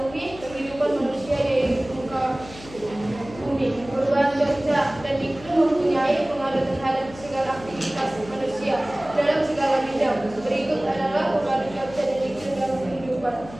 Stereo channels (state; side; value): noise; left; hum, 17 dB below the sound